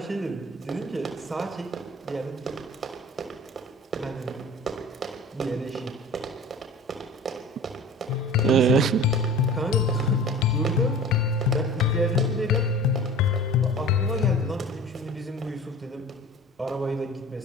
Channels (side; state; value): both; normal; correlation 0.41